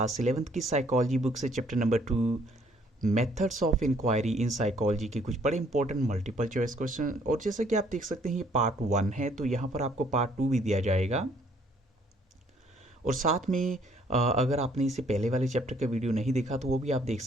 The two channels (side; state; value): both; normal; correlation 0.63